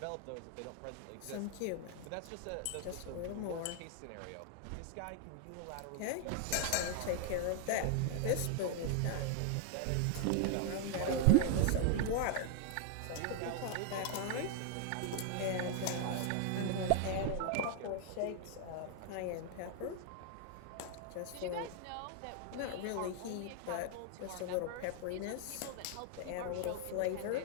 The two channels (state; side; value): different; both; correlation -0.01